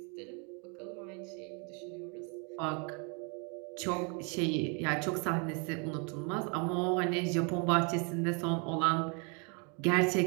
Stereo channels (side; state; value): left; quieter; 35.1 dB